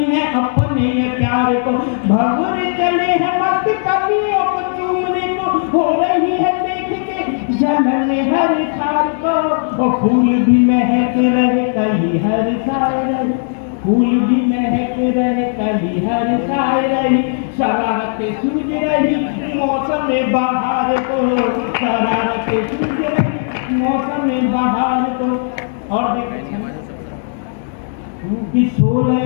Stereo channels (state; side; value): silent; right; digital silence